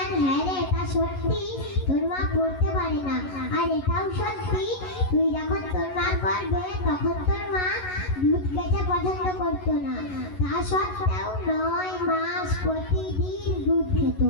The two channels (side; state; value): right; late; 11 ms